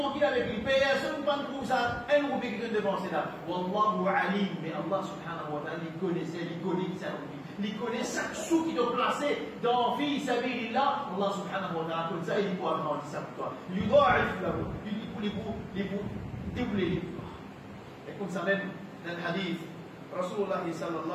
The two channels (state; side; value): identical; both; correlation 1.00